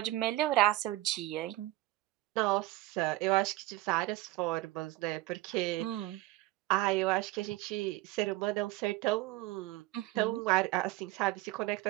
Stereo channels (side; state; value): left; quieter; 17.7 dB